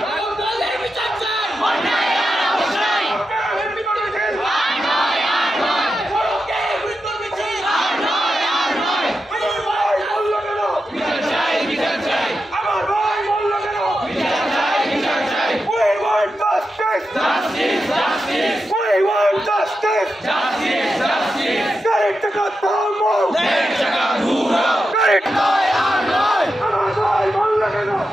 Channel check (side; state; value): both; normal; correlation 0.89